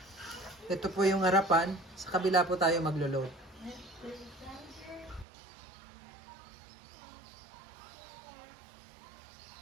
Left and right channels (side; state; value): left; drops out; at 5.2 s